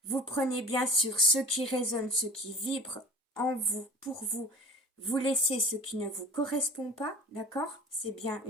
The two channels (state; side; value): normal; both; correlation 0.39